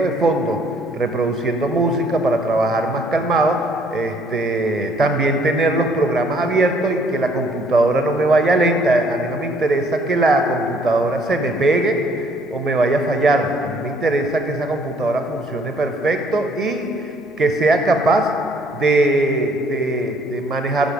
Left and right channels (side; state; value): both; normal; correlation 0.62